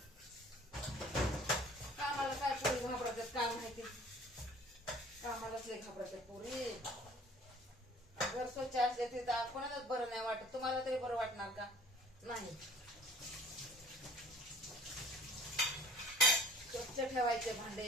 कामाला काय पोरी घाबरतात काय माहिती, कामालाच लय घाबरतात पोरी. घर स्वच्छ असले ते कोणालाच बरं नाही वाटत. तुम्हाला तरी बरं वाटणार का? नाही. स्वच्छ ठेवायचे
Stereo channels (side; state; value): both; normal; correlation 0.50